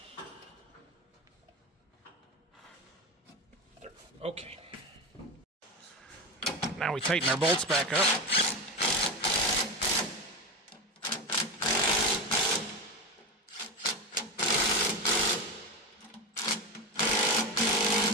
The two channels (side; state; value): both; normal; correlation 0.18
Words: Okay. Now we tighten our bolts back up.